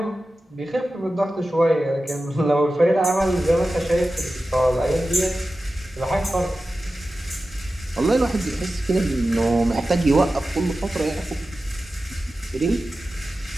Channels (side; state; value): both; normal; correlation 0.94